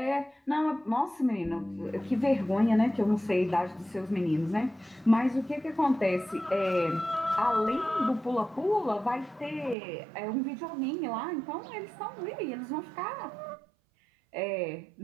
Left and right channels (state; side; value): drops out; left; at 9.8 s